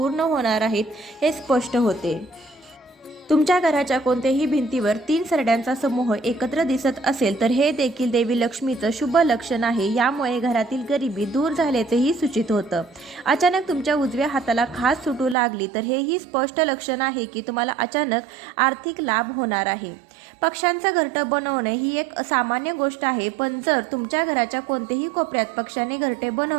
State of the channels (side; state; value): left; drops out; at 15.4 s